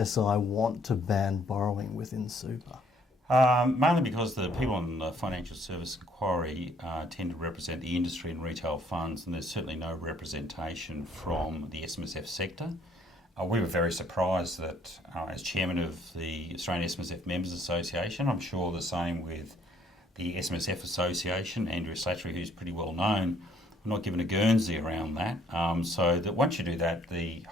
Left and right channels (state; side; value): normal; both; correlation 0.64